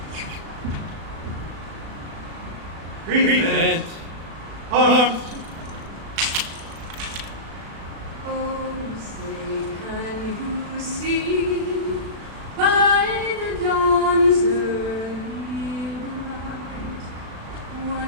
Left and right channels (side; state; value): left; late; 36 ms